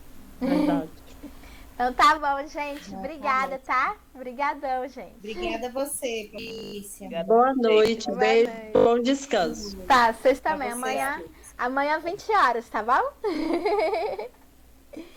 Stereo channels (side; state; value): both; identical; correlation 1.00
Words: Verdade. Então tá bom, gente. Obrigada, tá? Obrigadão, gente. Obrigada a você, Patrícia. Boa noite, beijo, bom descanso. Tá, vocês também. Amanhã 20 horas, tá bom?